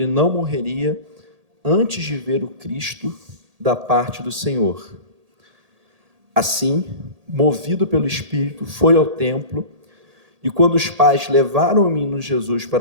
não morreria antes de ver o Cristo da parte do Senhor. Assim, movido pelo Espírito, foi ao templo, e quando os pais levaram o menino Jesus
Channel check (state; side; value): late; left; 1.8 ms